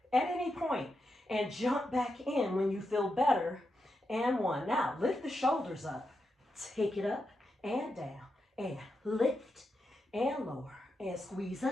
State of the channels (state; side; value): normal; both; correlation 0.86